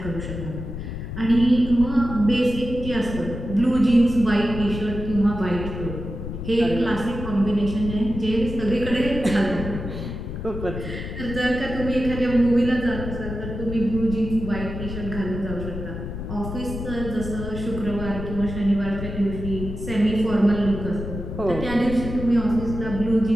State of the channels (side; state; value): left; noise; rumble, 7 dB below the sound